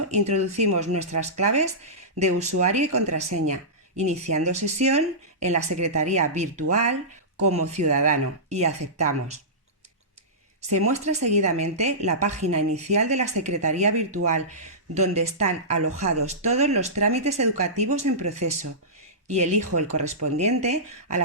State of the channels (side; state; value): both; normal; correlation -0.18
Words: introducimos nuestras claves de usuario y contraseña, iniciando sesión en la secretaría virtual como ciudadano y aceptamos. Se muestra seguidamente la página inicial de la Secretaría Virtual, donde están alojados todos los trámites educativos en proceso, y elijo el correspondiente a